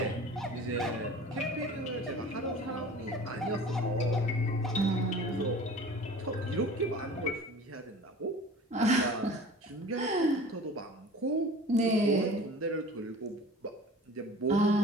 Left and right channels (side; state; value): both; normal; correlation 0.42